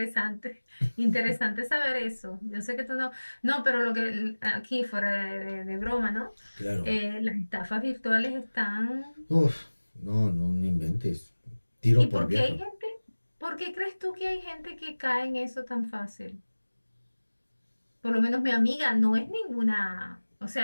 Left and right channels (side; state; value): both; inverted; correlation -1.00